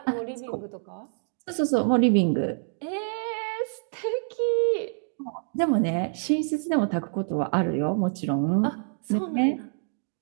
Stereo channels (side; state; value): left; silent; digital silence